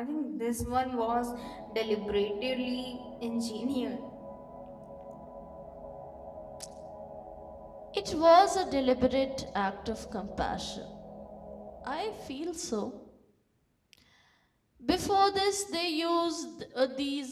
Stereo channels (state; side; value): identical; both; correlation 1.00